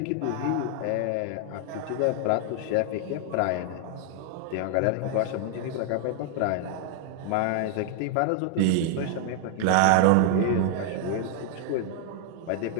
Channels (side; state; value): both; different; correlation 0.00